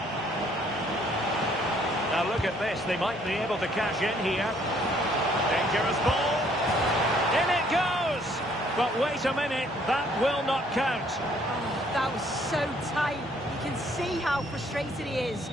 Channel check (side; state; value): both; normal; correlation 0.64